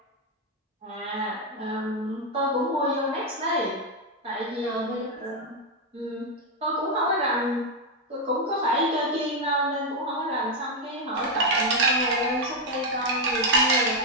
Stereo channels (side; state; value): both; normal; correlation 0.03